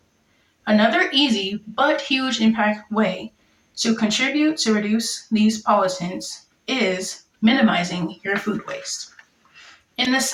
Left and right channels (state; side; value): identical; both; correlation 1.00